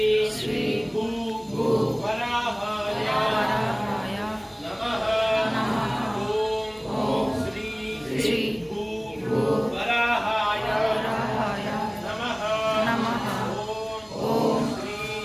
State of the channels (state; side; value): identical; both; correlation 1.00